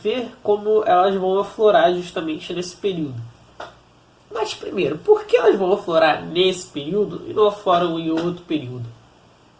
ver como elas vão aflorar justamente nesse período. Mas primeiro, por que elas vão aflorar nesse período e não afloram em outro período?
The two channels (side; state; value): both; identical; correlation 1.00